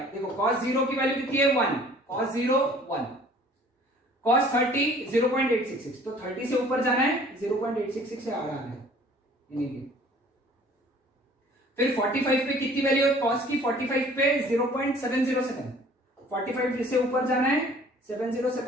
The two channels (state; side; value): normal; both; correlation 0.52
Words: देखो cos 0 की वैल्यू कितनी है 1, cos 0 1, cos 30 0.866, तो 30 से ऊपर जाना है, 0.866 से आ रहा है यानी। फिर 45 पे कितनी वैल्यू है cos की, 45 पे 0.707, 45 से ऊपर जाना है,